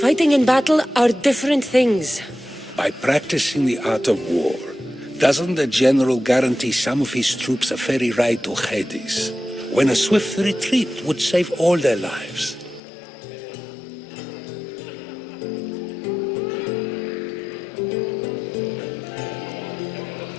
in battle are different things. By practicing the art of war, doesn't the general guarantee some of his troops a ferry ride to Hades, when a swift retreat would save all their lives?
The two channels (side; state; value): right; drops out; at 12.8 s